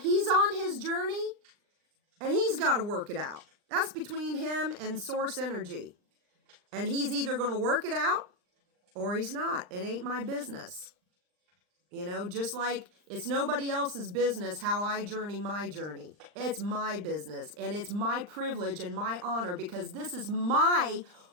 on his journey and he's got to work it out. That's between him and Source Energy. And he's either going to work it out or he's not. It ain't my business. You know, just like it's nobody else's business how I journey my journey. It's my business and it's my privilege and my honor because this is my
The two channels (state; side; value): late; left; 39 ms